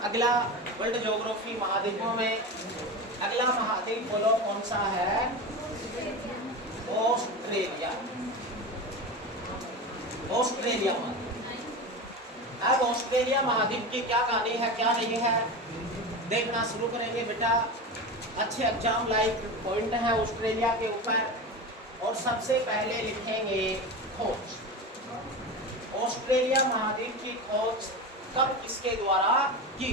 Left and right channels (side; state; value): both; normal; correlation 0.24